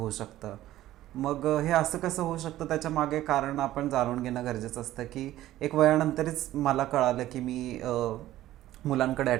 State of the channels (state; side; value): quieter; left; 14.4 dB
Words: शकतं. मग हे असं कसं होऊ शकतं त्याच्या मागे कारण आपण जाणून घेणं गरजेचं असतं की एक वयानंतरच मला कळालं की मी मुलांकडे